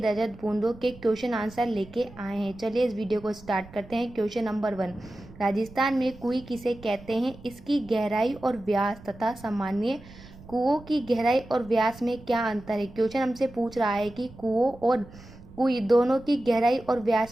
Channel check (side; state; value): right; noise; rumble, 20 dB below the sound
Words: बूंदों के क्वेश्चन आंसर लेके आए हैं। चलिए इस वीडियो को स्टार्ट करते हैं। क्वेश्चन नंबर 1, राजस्थान में कुएं किसे कहते हैं? इसकी गहराई और व्यास तथा सामान्य कुओं की गहराई और व्यास में क्या अंतर है? क्वेश्चन हमसे पूछ रहा है कि कुओं और कुएं दोनों की गहराई और